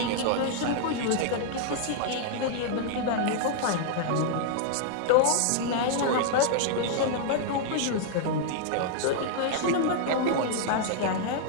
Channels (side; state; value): both; different; correlation -0.01